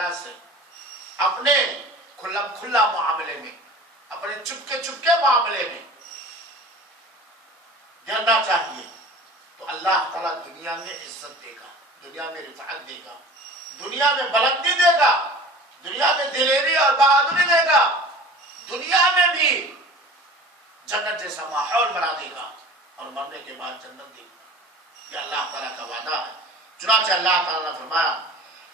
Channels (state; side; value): normal; both; correlation 0.41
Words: سے اپنے کھلا معاملے میں، اپنے چپکے معاملے میں ڈرنا چاہیے، تو اللہ تعالیٰ دنیا میں عزت دے گا، دنیا میں رفعت دے گا، دنیا میں بلندی دے گا، دنیا میں دنیا میں بھی جنت جیسا ماحول بنا دے گا اور مرنے کے بعد جنت دے گا. یہ اللہ تعالیٰ کا وعدہ ہے. چنانچہ اللہ تعالیٰ نے فرمایا